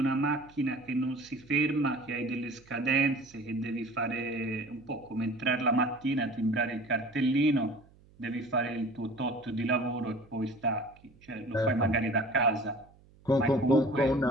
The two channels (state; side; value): noise; right; hum, 27 dB below the sound